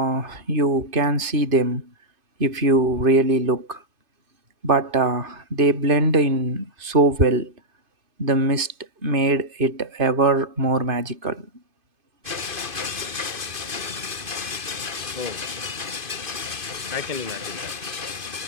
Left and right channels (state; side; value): late; left; 2.5 ms